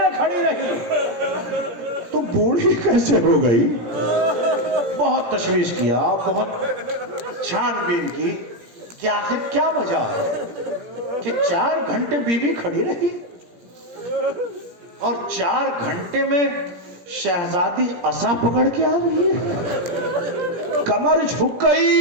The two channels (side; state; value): left; late; 17 ms